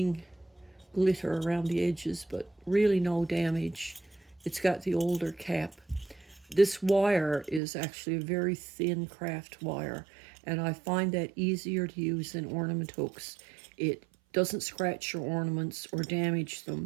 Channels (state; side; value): drops out; left; at 7.6 s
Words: glitter around the edges, but really no damage. It's got the older cap. This wire is actually a very thin craft wire, and I find that easier to use than ornament hooks. It doesn't scratch your ornaments or damage